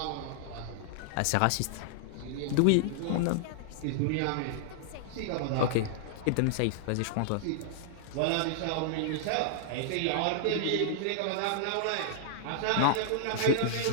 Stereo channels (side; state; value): both; different; correlation -0.01